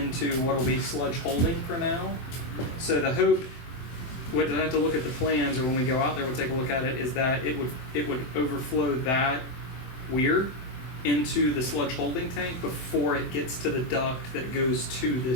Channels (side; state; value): right; late; 23 ms